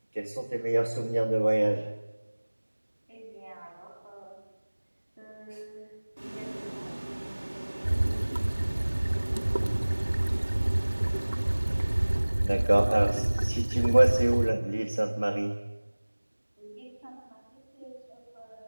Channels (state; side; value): inverted; both; correlation -1.00